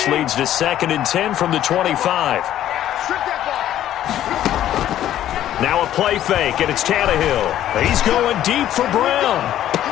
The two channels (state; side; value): quieter; right; 12.0 dB